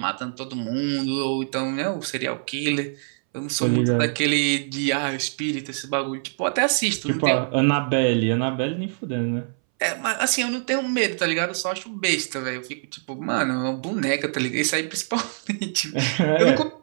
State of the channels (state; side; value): silent; left; 61 dB below the other